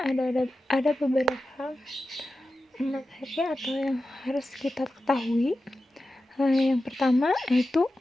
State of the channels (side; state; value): both; normal; correlation 0.93